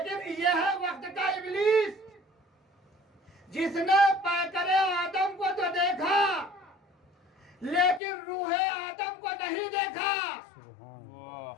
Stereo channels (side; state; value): right; drops out; at 8.0 s